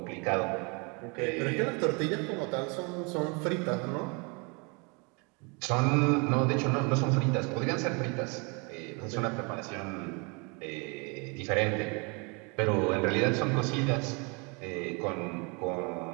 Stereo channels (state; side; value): quieter; left; 32.0 dB